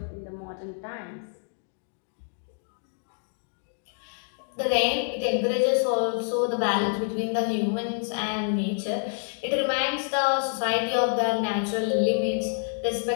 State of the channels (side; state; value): right; silent; digital silence